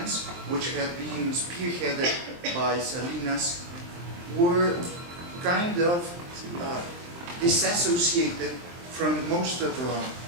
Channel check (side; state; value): left; late; 23 ms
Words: which had been spearheaded by Salinas, were kind of disassociated from most